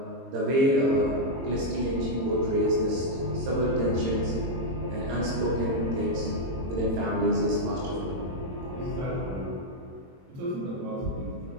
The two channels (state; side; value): late; left; 22 ms